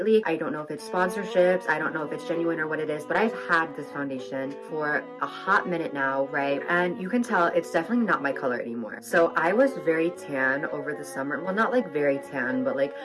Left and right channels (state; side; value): identical; both; correlation 1.00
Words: I don't know if it's sponsorships, I don't know if it's genuine or what it is, but I've had this foundation for a hot minute now, right? And you can tell it's definitely not my color anymore. So I was very tan over the summer. Well, not like very tan, but like